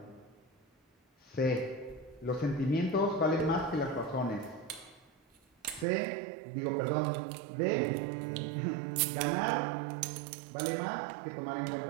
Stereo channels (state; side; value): drops out; left; at 5.9 s